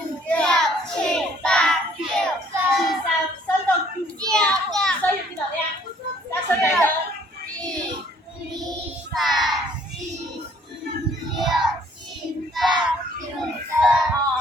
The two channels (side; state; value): both; normal; correlation 0.60